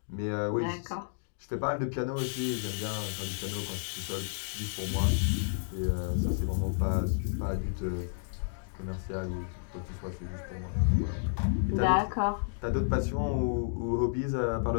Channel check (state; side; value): silent; right; digital silence